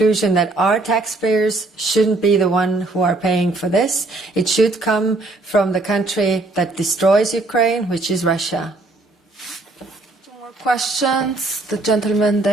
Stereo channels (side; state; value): left; quieter; 3.0 dB